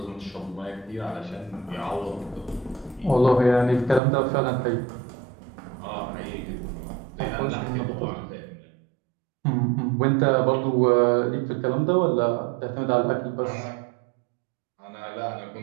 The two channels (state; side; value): drops out; left; at 4.0 s